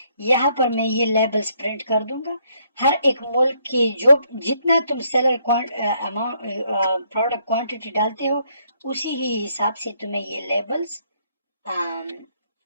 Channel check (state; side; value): inverted; both; correlation -0.71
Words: यहाँ पर मैं ये लेबल्स प्रिंट कर दूंगा, हर एक मुल्क की जो जितना तुम सेलर अमाउंट प्रोडक्ट क्वांटिटी डालते हो, उसी ही हिसाब से तुम्हें ये लेबल्स